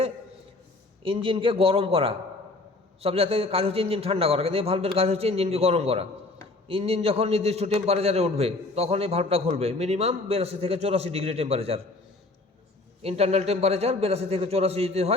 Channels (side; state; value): right; quieter; 3.1 dB